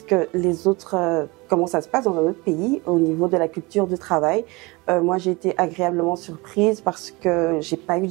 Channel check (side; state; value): left; quieter; 24.8 dB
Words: que les autres, comment ça se passe dans un autre pays au niveau de la culture du travail. Moi, j'ai été agréablement surprise parce que j'ai pas eu